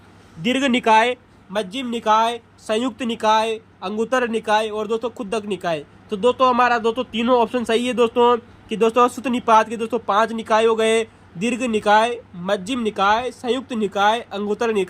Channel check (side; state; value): both; identical; correlation 1.00